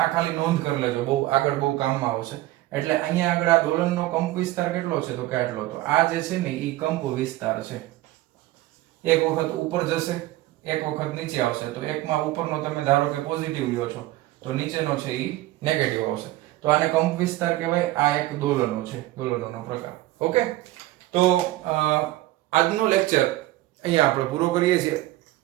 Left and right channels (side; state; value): left; quieter; 16.7 dB